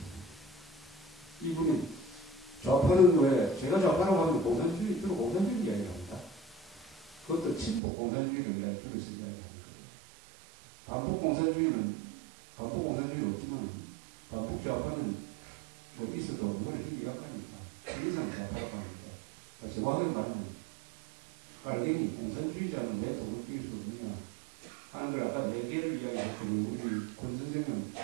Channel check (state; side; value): drops out; left; at 7.8 s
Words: 이분이 좌파는 왜, 제가 좌파라고 하면 공산주의, 주로 공산주의 이야기를 합니다. 그것도 친북 공산주의를 내가 들어서 이야기하는 거예요. 반북 공산주의는 없지만, 반북 좌파는 뭐 있어도 뭐가 힘이 약하니까, 시기상 좌파라고 하니까. 정확하게 말하면, 깔갱이 공산주의자는 왜 독을 띄울 수 없느냐 하는 걸 아까 4개를 이야기했거든요. 우리 권 선생은